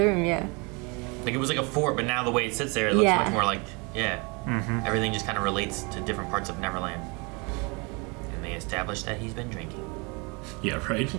room. Yeah. Like it was like a fort, but now the way it sits there, it looks Yeah. much more like, everything just kind of relates to different parts of Neverland. And they established that he's been drinking. Yeah, right?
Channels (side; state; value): left; quieter; 29.9 dB